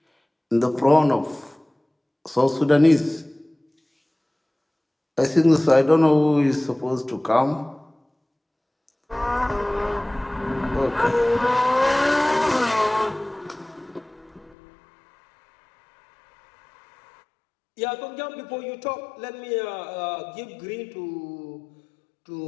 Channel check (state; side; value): drops out; right; at 14.6 s